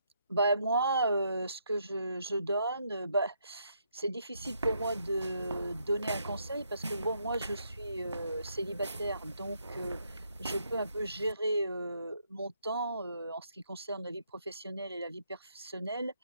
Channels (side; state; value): both; inverted; correlation -0.74